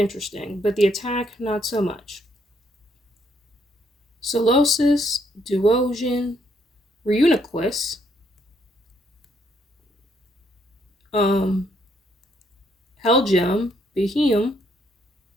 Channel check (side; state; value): both; normal; correlation 0.71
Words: but the attack not so much. Solosis, Duosion, Reuniclus, Helgem, Behemoth,